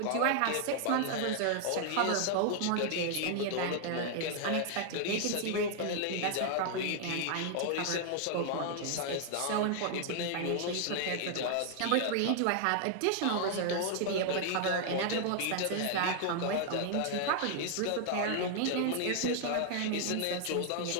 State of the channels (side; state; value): both; different; correlation 0.00